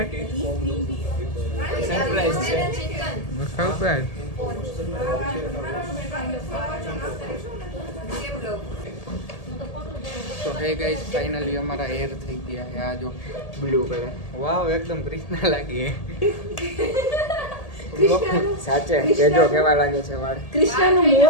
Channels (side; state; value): right; late; 1.8 ms